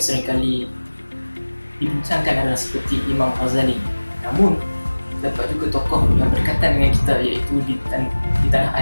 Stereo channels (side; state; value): both; inverted; correlation -1.00